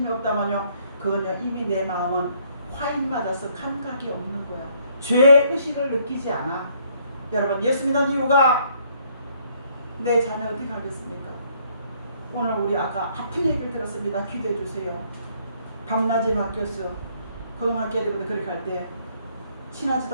없다만요 그건요 이미 내 마음은 화인 맞아서 감각이 없는 거야. 죄의식을 느끼지 않아. 여러분 예수 믿는 이유가 내 자녀 어떻게 하겠습니까? 오늘 우리 아까 아픈 얘기를 들었습니다. 기도해 주세요. 밤낮이 바뀌었어. 고등학교 때부터 그렇게 할 때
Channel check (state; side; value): inverted; both; correlation -0.66